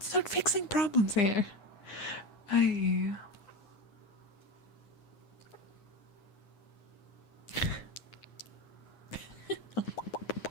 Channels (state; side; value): late; right; 9.7 ms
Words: not fixing problems here.